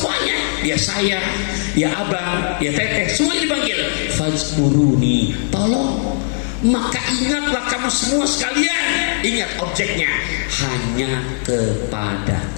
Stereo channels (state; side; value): silent; right; digital silence